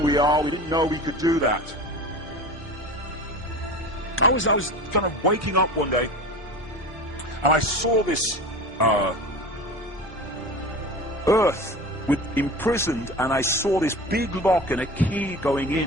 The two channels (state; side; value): normal; both; correlation 0.33